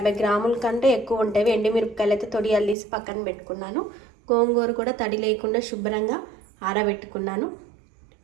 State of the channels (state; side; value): drops out; left; at 2.8 s